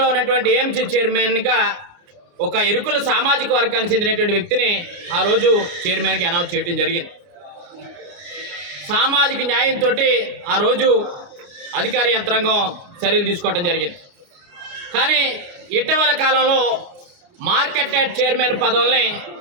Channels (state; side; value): late; left; 29 ms